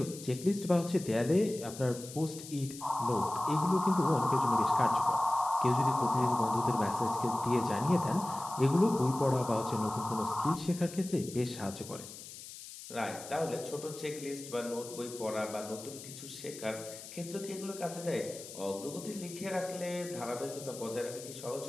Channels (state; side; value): noise; left; hiss, 13 dB below the sound